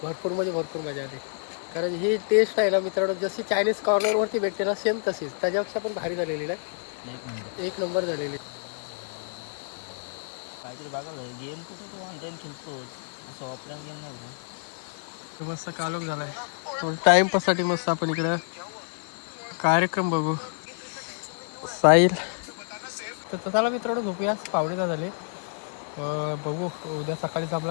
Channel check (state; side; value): silent; right; digital silence